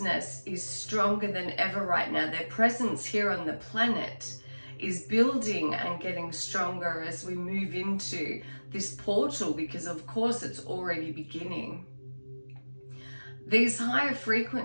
is stronger than ever right now. Their presence here on the planet is building and getting stronger as we move into this portal, because of course it's already beginning. These higher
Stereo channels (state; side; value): inverted; both; correlation -1.00